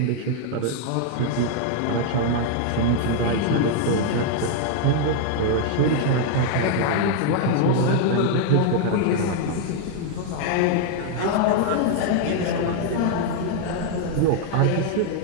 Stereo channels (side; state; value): both; different; correlation 0.00